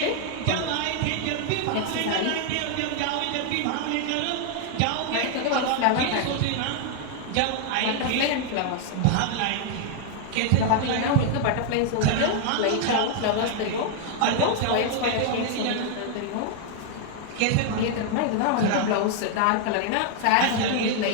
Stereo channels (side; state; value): both; different; correlation 0.00